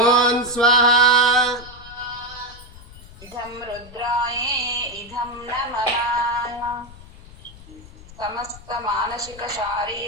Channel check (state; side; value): noise; left; rumble, 19 dB below the sound